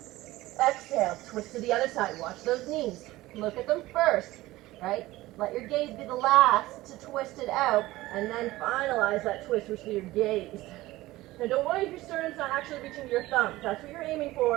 Exhale. Twist to the other side. Watch those knees. Look at them first, right? Let your gaze be the last to twist it out, and then finalize that twist with your gaze. Now don't worry if your sternum's not actually reaching to your thumbs. That's what you're aiming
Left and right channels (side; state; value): left; quieter; 17.8 dB